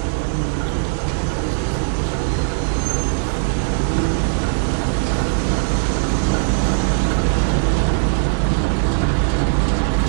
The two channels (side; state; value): left; silent; digital silence